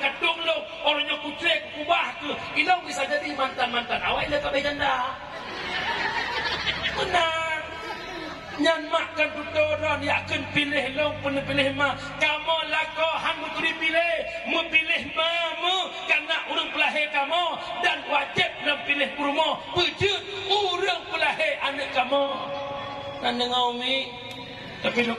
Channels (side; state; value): both; identical; correlation 1.00